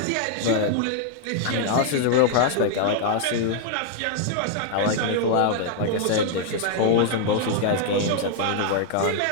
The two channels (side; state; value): both; different; correlation 0.00